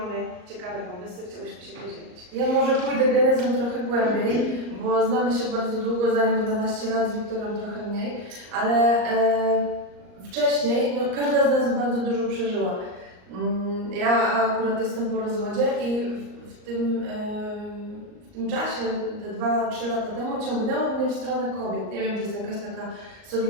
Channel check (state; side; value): late; left; 38 ms